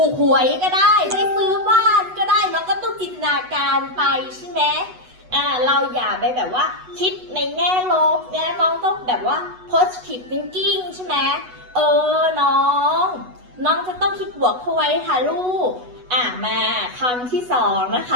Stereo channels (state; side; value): late; left; 8.1 ms